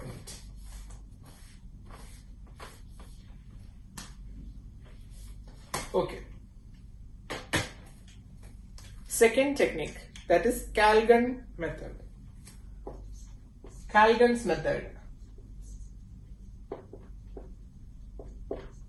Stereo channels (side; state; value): both; identical; correlation 1.00